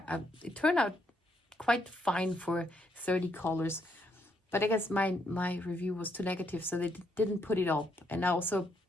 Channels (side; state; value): both; normal; correlation 0.74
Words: It turned out quite fine for 30 colors, but I guess my review was too negative, so they didn't put it up. And I also